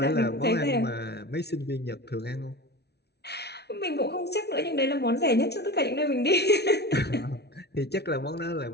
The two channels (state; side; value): late; right; 0.49 ms